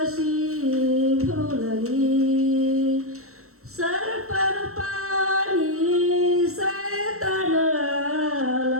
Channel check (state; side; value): late; left; 0.63 ms